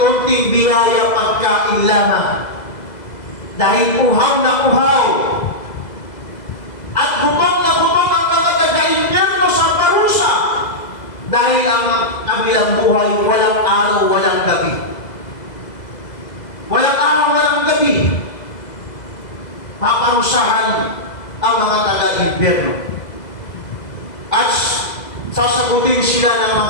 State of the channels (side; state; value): right; late; 2.0 ms